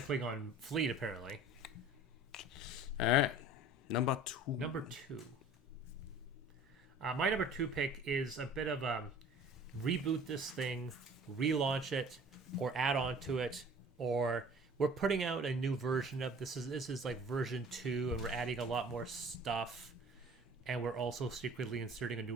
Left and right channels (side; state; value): both; normal; correlation 0.47